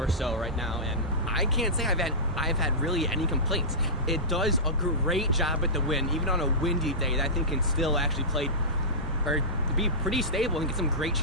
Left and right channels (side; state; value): both; normal; correlation -0.17